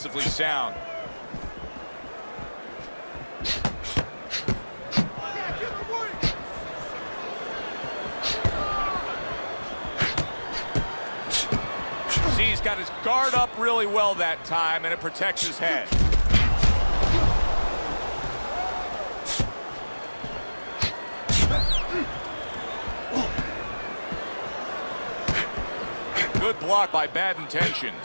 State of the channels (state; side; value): inverted; both; correlation -1.00